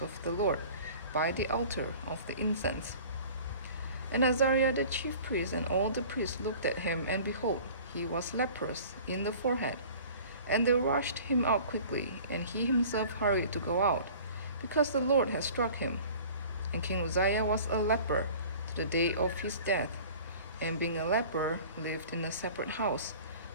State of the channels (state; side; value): inverted; both; correlation -0.45